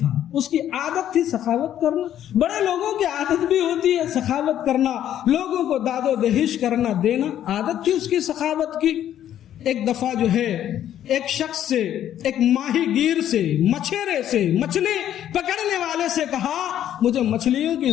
اس کی عادت تھی سخاوت کرنا. بڑے لوگوں کی عادت بھی ہوتی ہے سخاوت کرنا, لوگوں کو داد و دہش کرنا دینا, عادت تھی اس کی سخاوت کی. ایک دفعہ جو ہے ایک شخص سے, ایک ماہی گیر سے, مچھیرے سے, مچھلی پکڑنے والے سے کہا مجھے مچھلیوں کی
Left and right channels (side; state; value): right; quieter; 11.0 dB